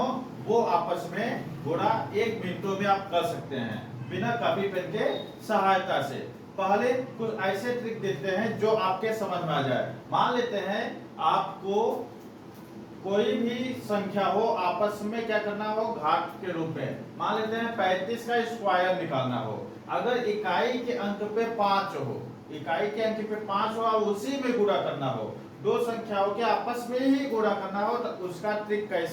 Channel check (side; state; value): both; identical; correlation 1.00